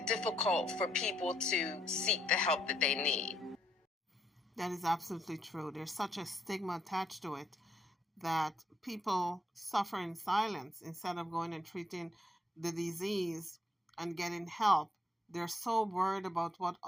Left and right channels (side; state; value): both; normal; correlation 0.74